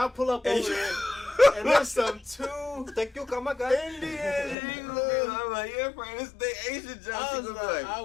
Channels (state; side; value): drops out; right; at 4.5 s